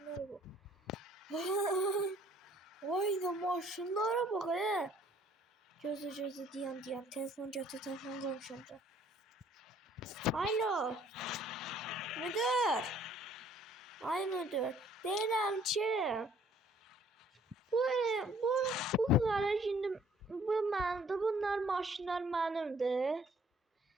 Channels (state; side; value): normal; both; correlation 0.59